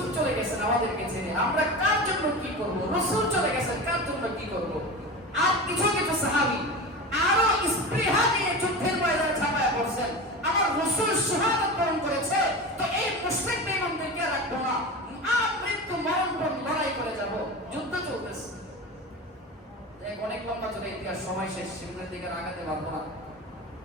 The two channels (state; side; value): normal; both; correlation 0.28